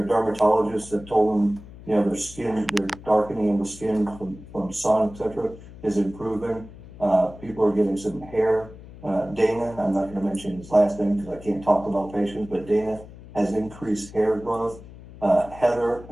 dermatologists have told them, their skin, their darkening of the skin from sun, etc., is improving. People are getting some hair. Dana, I'm not going to mention his last name because I can't talk about patients, but Dana has increased hair growth. Heather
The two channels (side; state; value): left; noise; hum, 17 dB below the sound